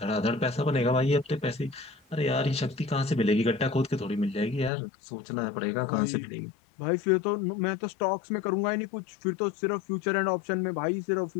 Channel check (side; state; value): right; drops out; at 4.7 s